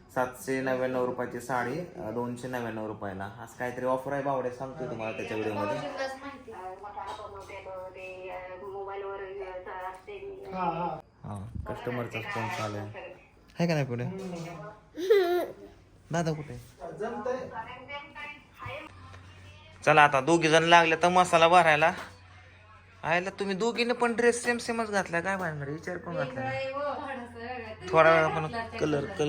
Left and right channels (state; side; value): identical; both; correlation 1.00